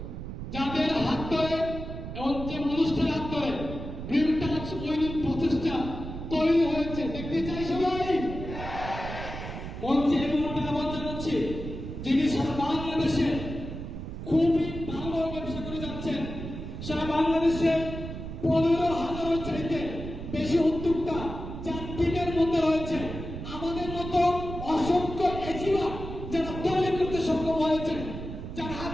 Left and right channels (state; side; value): noise; right; rumble, 8 dB below the sound